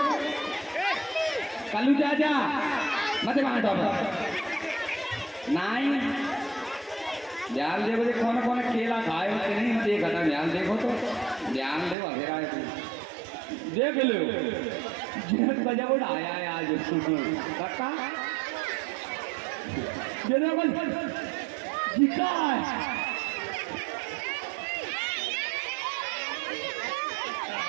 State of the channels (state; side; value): drops out; left; at 12.0 s